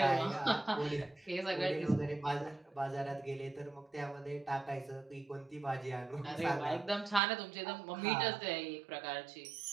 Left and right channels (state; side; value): drops out; left; at 7.2 s